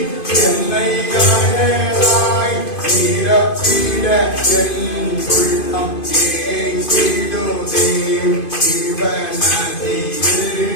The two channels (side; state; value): right; late; 2.5 ms